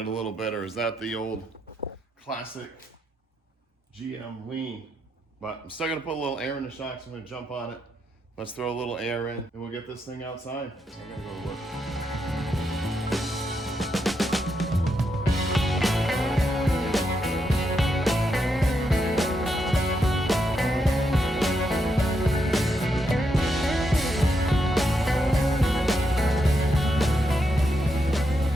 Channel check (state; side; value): normal; both; correlation 0.81